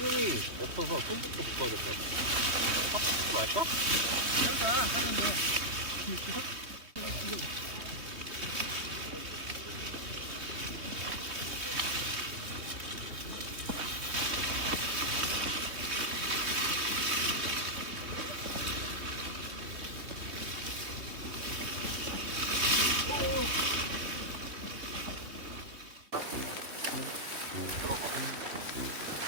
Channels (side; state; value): left; late; 3.4 ms